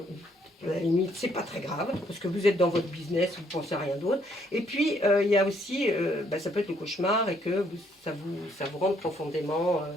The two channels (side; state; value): both; normal; correlation 0.69